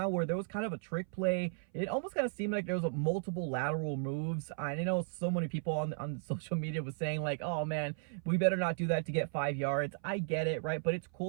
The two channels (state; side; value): silent; left; 54 dB below the other